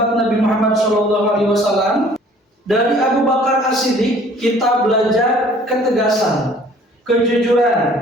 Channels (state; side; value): normal; both; correlation 0.54